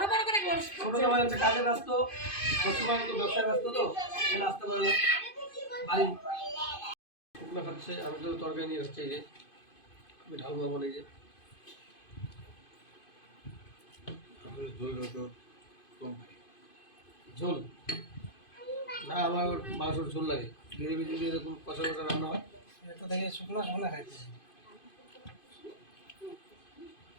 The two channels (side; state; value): right; late; 2.5 ms